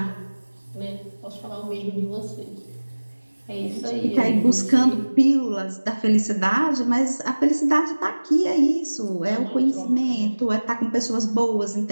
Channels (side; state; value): both; inverted; correlation -1.00